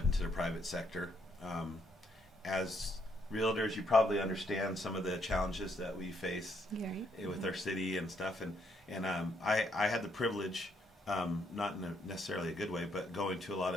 into the private sector. As realtors, you probably understand some of the challenges that we face with our city and stuff. And I had the privilege, not in necessarily a good way, but going to a lot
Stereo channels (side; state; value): both; normal; correlation 0.73